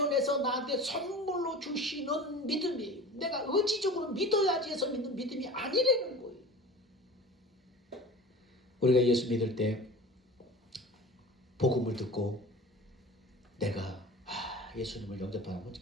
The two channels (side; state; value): both; normal; correlation 0.38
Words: 나한테 선물로 주시는 믿음이에요. 내가 의지적으로 믿어야지 해서 믿는 믿음이 아니라는 거예요. 우리가 예수 믿을 때 복음을 듣고 내가 예수님을 영접하고